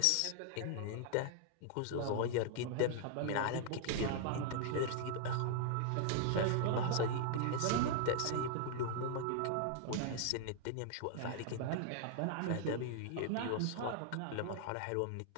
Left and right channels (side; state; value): both; different; correlation -0.01